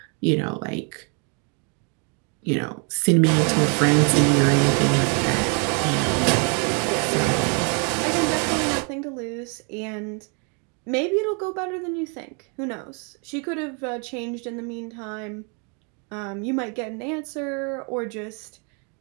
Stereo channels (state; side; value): quieter; left; 36.4 dB